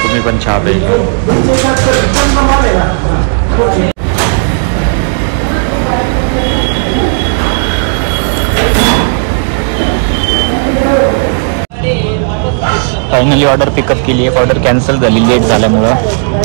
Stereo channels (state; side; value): silent; left; digital silence